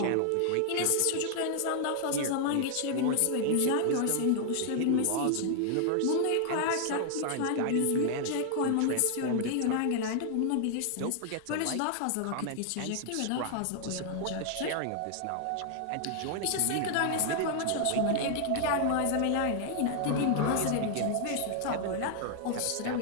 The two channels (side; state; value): both; different; correlation 0.00